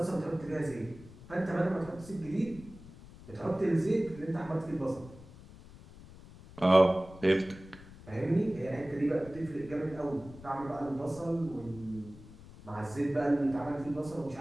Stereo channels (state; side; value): noise; left; rumble, 18 dB below the sound